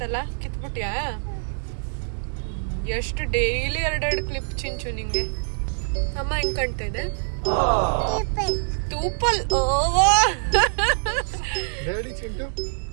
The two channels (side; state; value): left; silent; digital silence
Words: ಕಿತ್ಬಿಟ್ಯಾ? ಎಷ್ಟು ಡೈಲಿ 2 ಕ್ಲಿಪ್ ಚಿಂಚು ನಿಂಗೆ. ಅಮ್ಮ ಹೆಂಗ್ ಕಾಣ್ತಾ ಇದೆ? ತೂಪಲ್.